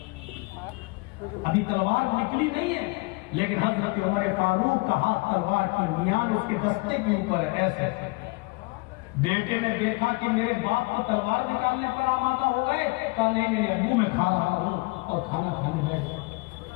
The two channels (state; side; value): quieter; right; 26.7 dB